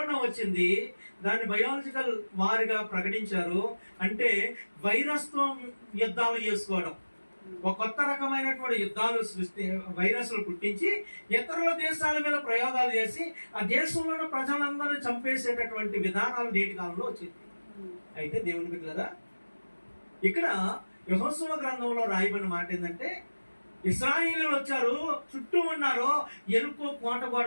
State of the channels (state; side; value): inverted; both; correlation -1.00